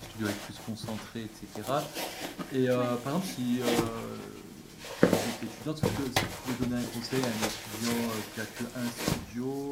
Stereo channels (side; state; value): both; identical; correlation 1.00